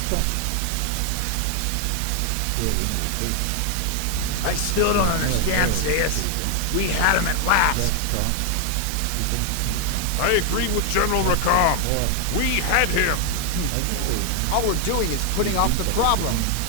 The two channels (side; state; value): both; different; correlation 0.00